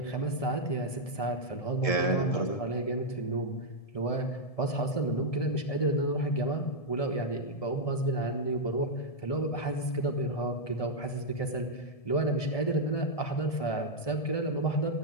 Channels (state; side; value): late; right; 1.7 ms